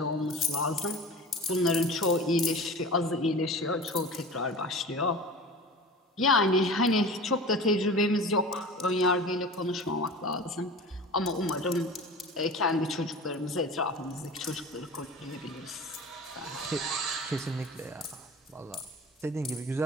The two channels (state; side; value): normal; both; correlation 0.35